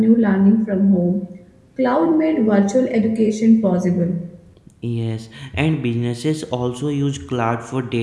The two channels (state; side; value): identical; both; correlation 1.00